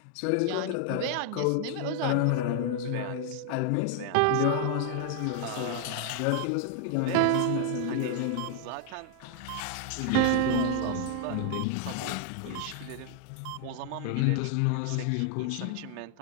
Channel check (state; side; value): different; both; correlation 0.00